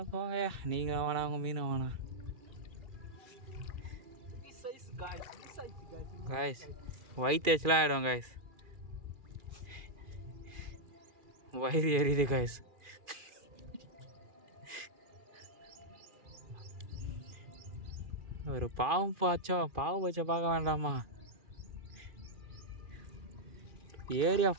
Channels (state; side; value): late; left; 2.4 ms